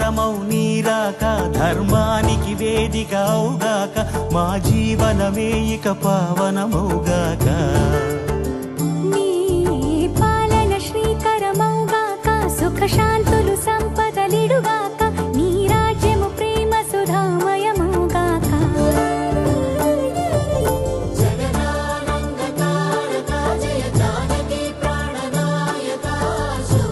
నీరాక ధర్మానికి వేదికవుగాక మా జీవనమే ఇక పావనమౌగాక నీ పాలన శ్రీకరమౌగాక సుఖ శాంతులు సంపదలిడుగాక నీ రాజ్యము ప్రేమ సుధామయమౌగాక జగదానందకారక జయ జానకి ప్రాణనాయక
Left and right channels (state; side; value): identical; both; correlation 1.00